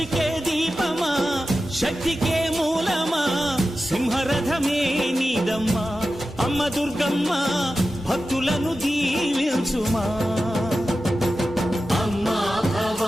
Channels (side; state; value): both; normal; correlation 0.93